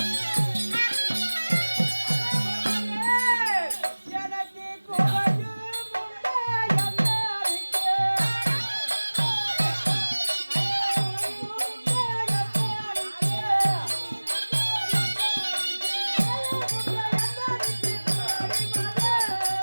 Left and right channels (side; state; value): both; inverted; correlation -1.00